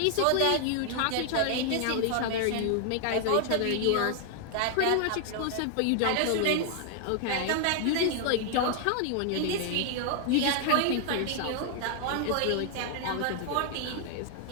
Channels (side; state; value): both; different; correlation 0.00